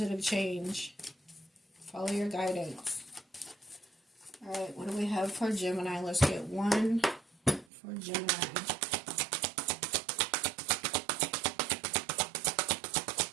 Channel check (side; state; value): left; drops out; at 7.7 s